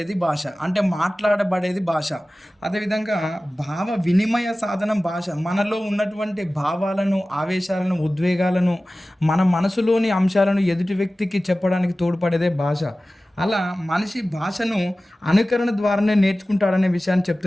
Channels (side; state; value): both; normal; correlation 0.96